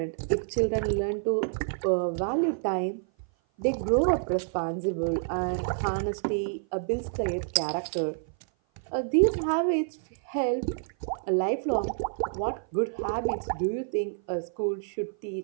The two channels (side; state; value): left; silent; 55 dB below the other